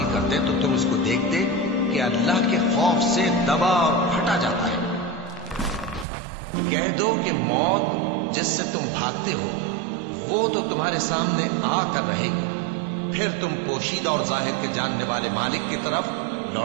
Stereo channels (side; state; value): left; drops out; at 6.1 s